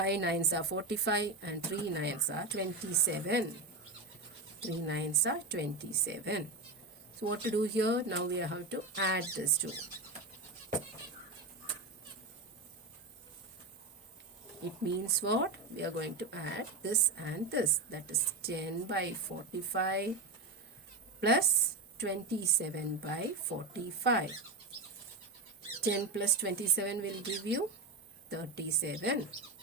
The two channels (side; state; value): left; quieter; 3.4 dB